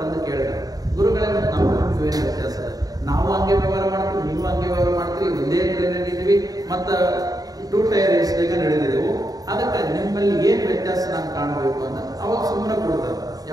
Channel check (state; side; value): late; left; 0.18 ms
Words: ಬಂದು ಕೇಳಿದ್ರು, ಗುರುಗಳೇ ಮತ್ತೆ ನಮಗೂ ಏನು ವ್ಯತ್ಯಾಸ ಅದ, ನಾವು ಹಂಗೆ ವ್ಯವಹಾರ ಮಾಡ್ತೀವಿ, ನೀವು ಹಂಗೆ ವ್ಯವಹಾರ ಮಾಡ್ತೀವಿ, ಒಂದೇ ಟ್ರೈನ್ ಇದ್ದೀವಿ, ಮತ್ತ 2 ಟೈರ್ AC ನಡೆದಿದ್ದೆವು, ಅದಕ್ಕೆ ನಿಮ್ಮಲ್ಲಿ ಏನ್ ವ್ಯತ್ಯಾಸ ನಾನು ಕಾಣಬೇಕು ಅಂತ ಅವಾಗ ಸುಮ್ಮನೆ ಕೊಡ್ತಾರೆ.